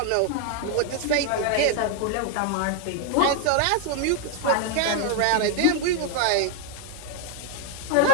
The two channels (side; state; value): both; different; correlation 0.00